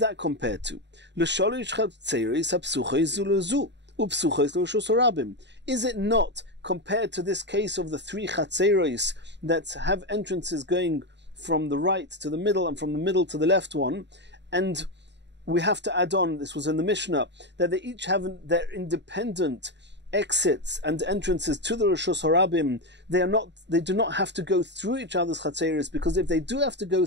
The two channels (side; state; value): left; late; 0.51 ms